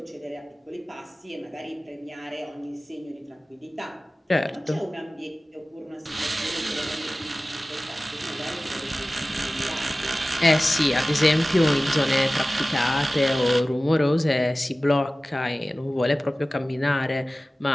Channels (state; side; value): normal; both; correlation 0.97